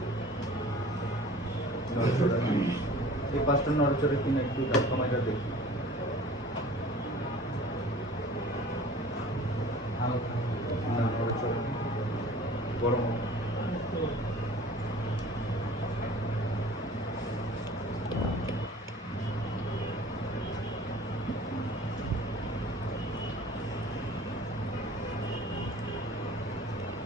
নড়েচড়ে না। এই পাঁচটা নড়েচড়ে কিনে একটু সময়টা দেখি। না নড়েচড়ে না। গরম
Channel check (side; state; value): both; normal; correlation 0.46